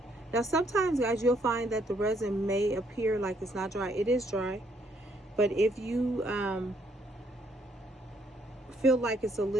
now sometimes, guys, you'll find that the resin may appear like it's not dry. It is dry, but if you feel like it's a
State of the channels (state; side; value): normal; both; correlation 0.69